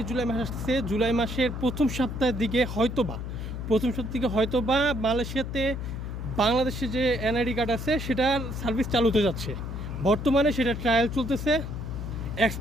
জুলাই মাস আসছে, জুলাই মাসের প্রথম সপ্তাহের দিকে হয়তোবা মালয়েশিয়াতে বাংলাদেশে যে এনআইডি কার্ড আছে সেটার সার্ভিস চালু হতে যাচ্ছে। বর্তমানে সেটা ট্রায়াল চলতেছে।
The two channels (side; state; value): left; noise; hum, 6 dB below the sound